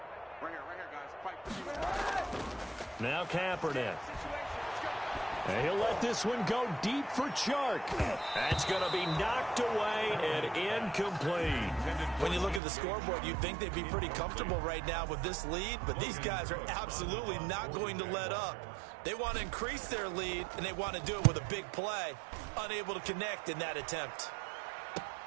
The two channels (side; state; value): left; drops out; at 12.6 s